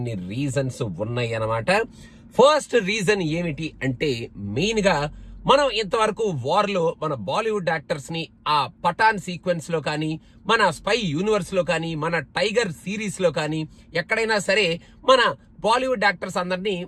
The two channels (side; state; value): both; identical; correlation 1.00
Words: రీజన్స్ ఉన్నాయి అన్నమాట. ఫస్ట్ రీజన్ ఏమిటి అంటే, మెయిన్ గా మనం ఇంతవరకు వార్ లో మన బాలీవుడ్ యాక్టర్స్ ని ఆ పఠాన్ సీక్వెన్స్ లో కానీ, మన స్పై యూనివర్స్ లో కానీ, మన టైగర్ సిరీస్ లో కానీ ఎక్కడైనా సరే మన బాలీవుడ్ యాక్టర్స్ అందరినీ